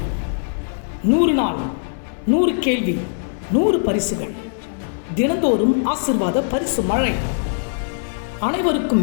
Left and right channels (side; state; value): right; silent; 64 dB below the other